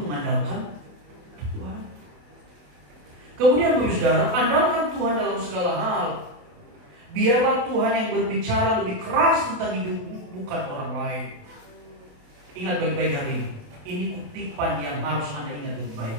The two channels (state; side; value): late; left; 28 ms